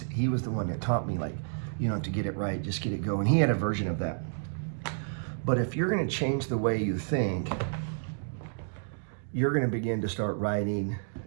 was the one that taught me, like, you know, to get it right, just get it going. He had a version of that. But if you're gonna change the way you think, you're going to begin to start writing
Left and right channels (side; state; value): left; silent; digital silence